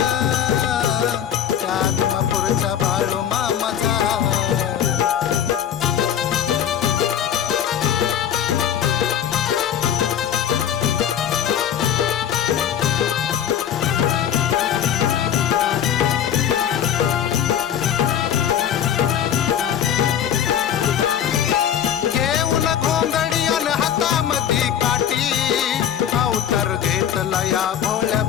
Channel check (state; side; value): quieter; right; 9.5 dB